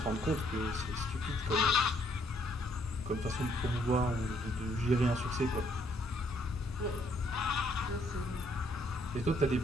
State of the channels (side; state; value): both; normal; correlation 0.68